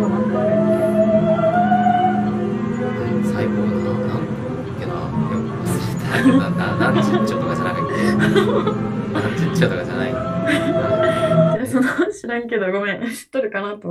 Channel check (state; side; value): identical; both; correlation 1.00